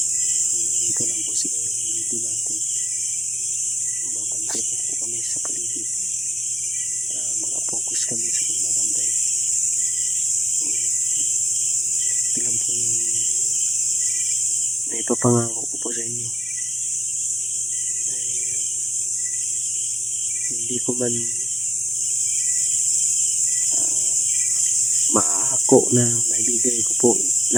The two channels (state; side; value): normal; both; correlation 0.92